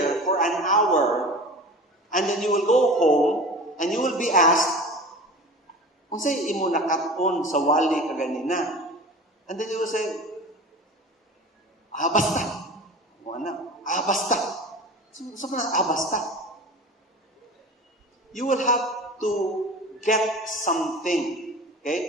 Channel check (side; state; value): both; normal; correlation 0.36